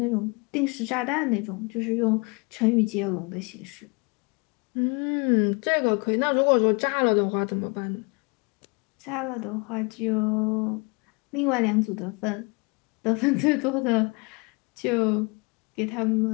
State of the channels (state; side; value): quieter; right; 30.5 dB